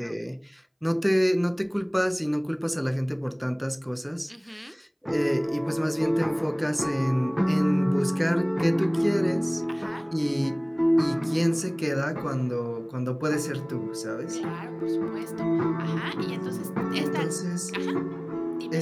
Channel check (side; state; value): both; identical; correlation 1.00